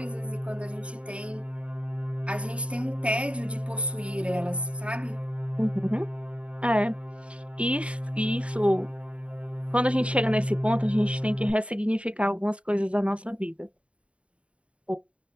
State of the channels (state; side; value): late; left; 0.061 ms